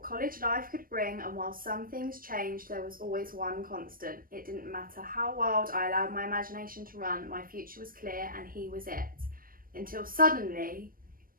college life could bring, and while some things changed, there was always one constant. It didn't matter how wild I allowed my imagination to run, my future was clear and he was it. Until suddenly,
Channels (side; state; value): left; late; 0.41 ms